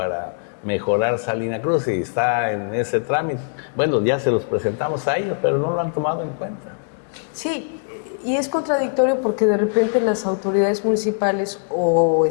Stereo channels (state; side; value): silent; right; digital silence